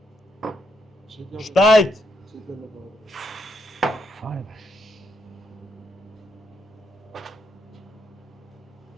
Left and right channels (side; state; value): both; normal; correlation 0.77